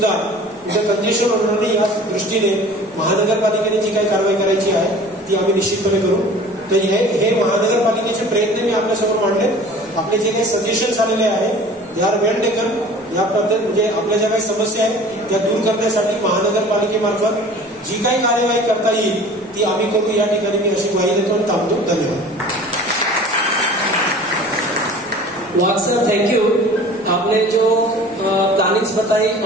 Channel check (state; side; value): normal; both; correlation 0.44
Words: तिथे कंजेशन होणार नाही या दृष्टीने महानगरपालिकेने जी काही कारवाई करायची आहे ती आम्ही निश्चितपणे करू. तर हे महानगरपालिकेचे प्रयत्न मी आपल्यासमोर मांडले. आपले जे काही सजेशन्स आलेले आहेत दे आर वेल टेकन. या पद्धत म्हणजे आपल्या ज्या काही समस्या आहेत त्या दूर करण्यासाठी महानगरपालिकेमार्फत जी काही कार्यवाही करता येईल ती आम्ही करू. या ठिकाणी मी अशी ग्वाही देतो आणि थांबतो. धन्यवाद. वाघ सर थैंक यू. आपने जो प्लानिंग्स बताई